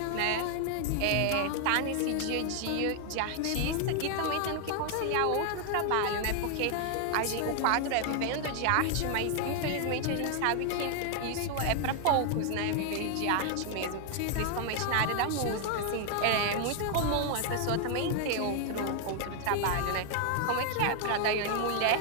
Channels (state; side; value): different; both; correlation 0.00